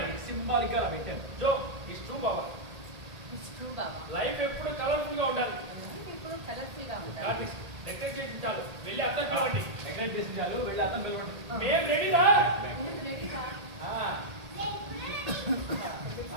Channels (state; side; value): late; left; 1.8 ms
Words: జో ఇట్స్ ట్రూ బాబా. లైఫ్ ఎప్పుడు కలర్ఫుల్ గా ఉండాలి. డెకరేట్ చేసి చాలు, వెళ్ళి అర్థం కావండి. మేము రెడీరా?